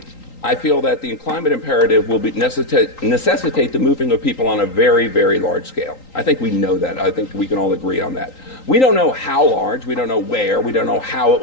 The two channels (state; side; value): late; right; 3.8 ms